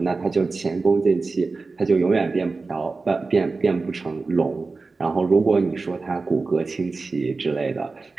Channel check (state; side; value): quieter; left; 3.9 dB